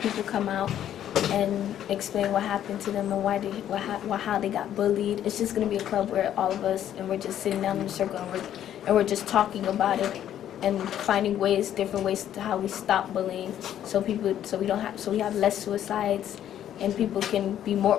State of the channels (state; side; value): quieter; right; 10.9 dB